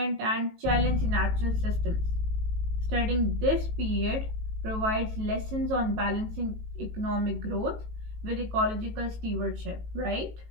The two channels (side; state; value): left; late; 18 ms